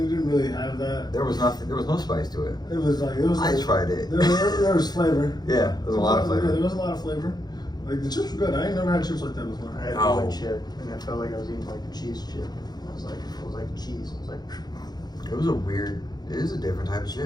didn't really have that. There was nothing. There was no spice to it. It was like I tried it. There was flavor. Yeah, there was a lot of flavor. Yeah, there was a lot of flavor. Like the chips were good. I ain't never had chips like that before. I had one chip, and I felt like I was eating like a cheese chip. It was like cheese. I was like. It was a weird. It is a different type of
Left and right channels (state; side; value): late; right; 0.20 ms